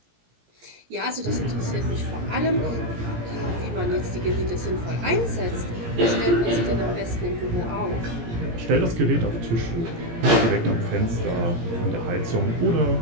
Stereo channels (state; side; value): late; left; 17 ms